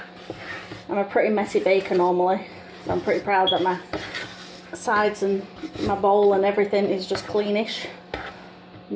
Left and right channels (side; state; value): both; identical; correlation 1.00